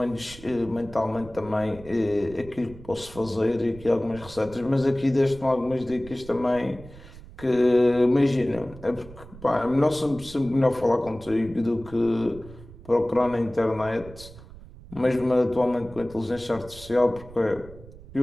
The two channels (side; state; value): right; noise; rumble, 18 dB below the sound